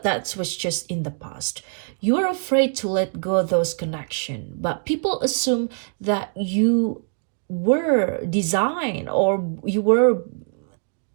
that was just in the past. You are afraid to let go of those connections, but people assume that you were designed or you were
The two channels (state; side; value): silent; left; 58 dB below the other